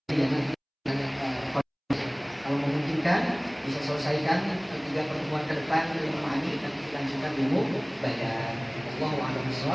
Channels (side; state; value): both; identical; correlation 1.00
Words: Kalau memungkinkan bisa selesaikan 3 pertemuan ke depan ilmu ma'ani dan dilanjutkan ilmu bayan. Wallahu a'lam